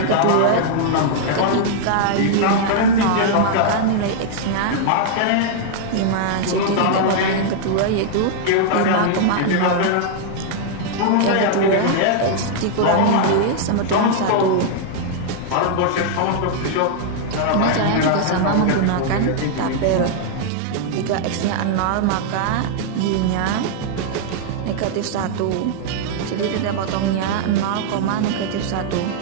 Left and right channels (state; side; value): different; both; correlation -0.01